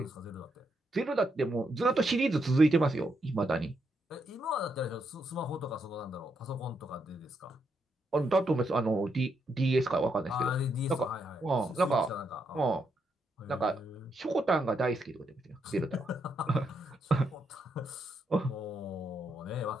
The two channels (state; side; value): normal; both; correlation 0.79